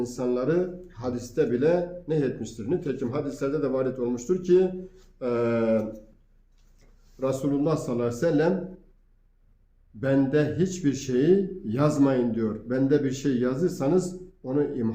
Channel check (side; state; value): both; identical; correlation 1.00